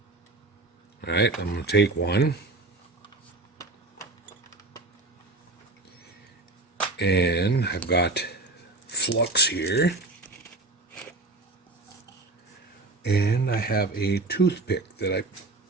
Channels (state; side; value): quieter; left; 3.1 dB